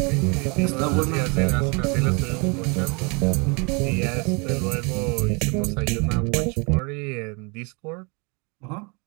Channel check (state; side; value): quieter; left; 31.8 dB